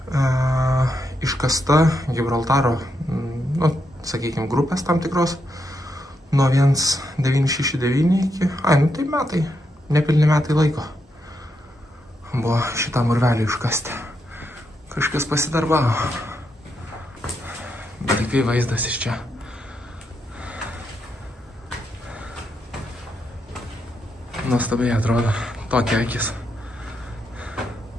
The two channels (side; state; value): both; normal; correlation 0.81